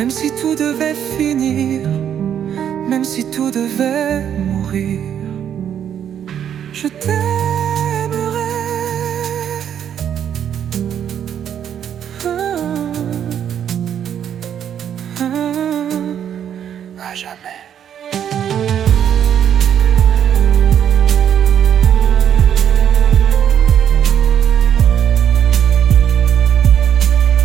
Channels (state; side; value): quieter; left; 9.2 dB